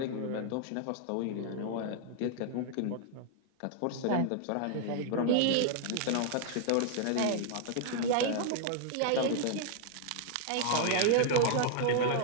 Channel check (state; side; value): different; both; correlation 0.00